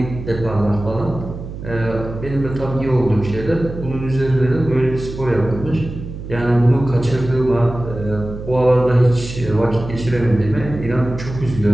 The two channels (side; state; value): right; noise; hum, 10 dB below the sound